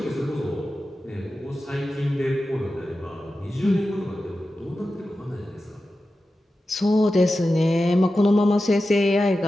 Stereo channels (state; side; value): normal; both; correlation 0.93